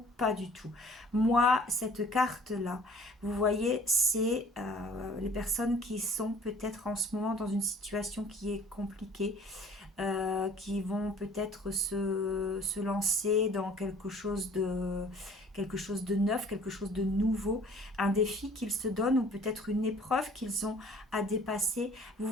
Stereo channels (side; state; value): both; normal; correlation 0.52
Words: pas du tout. Moi, cette carte-là, vous voyez, c'est les personnes qui sont peut-être en ce moment dans une situation qui est compliquée, qui vont peut-être se lancer dans quelque chose de neuf, quelque chose de nouveau, un défi qu'ils se donnent ou peut-être une épreuve qu'ils ont à dépasser. Vous